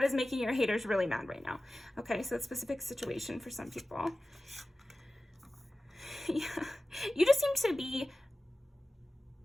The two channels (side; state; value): both; normal; correlation 0.96